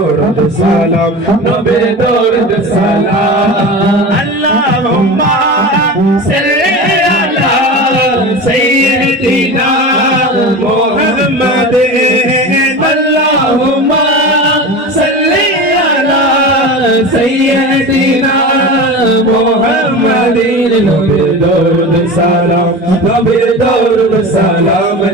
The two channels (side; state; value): both; normal; correlation 0.29